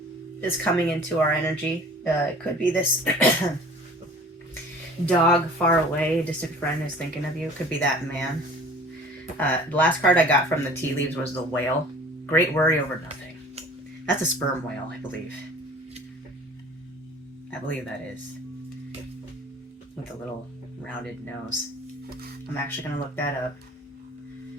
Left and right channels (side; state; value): both; normal; correlation 0.47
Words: coming into our energy. It could be this dog far away, distant friend is thinking of you. It could be that man. The last card I got from the tea leaves was the whale. Great worry over nothing. That's a sperm whale, I believe. I believe that is. With a little rounded nose. I'm actually going to look that up.